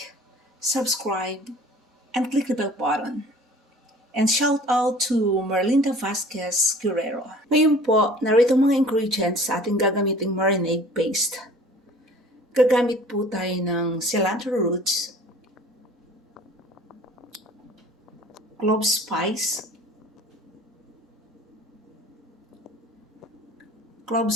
subscribe, and click the bell button. And shout out to Merlinda Vasquez Guerrero. Ngayon po, narito mga ingredients sa ating gagamiting marinade paste. Gagamit po tayo ng cilantro roots, clove spice,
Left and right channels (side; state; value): both; normal; correlation 0.47